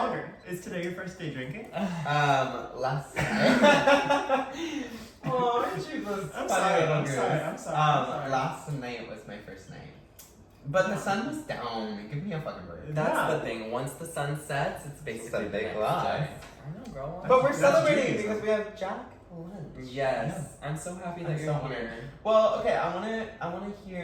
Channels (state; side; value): identical; both; correlation 1.00